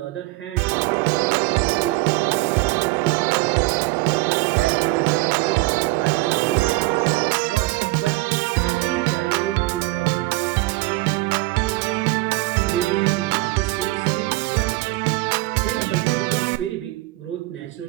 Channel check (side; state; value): left; quieter; 21.2 dB